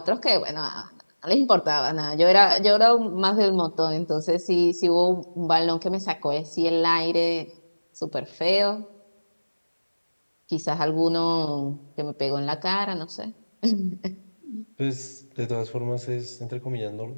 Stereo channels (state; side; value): inverted; both; correlation -1.00